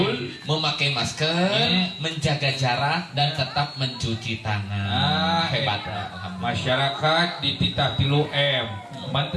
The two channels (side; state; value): both; identical; correlation 1.00